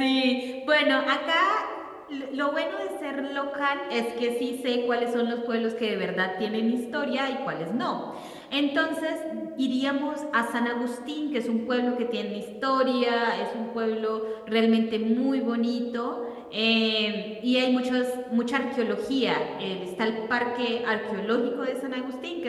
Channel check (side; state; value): both; identical; correlation 1.00